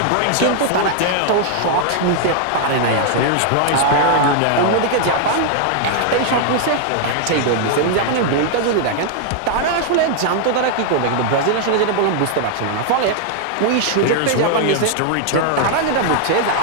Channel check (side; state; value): both; different; correlation 0.00